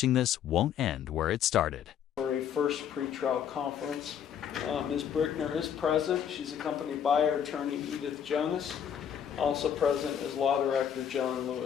this won't end where it started. For a first pretrial conference. Ms. Brickner is present. She's accompanied by her attorney, Edith Jonas. Also present is Law Director John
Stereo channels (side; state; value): right; quieter; 8.7 dB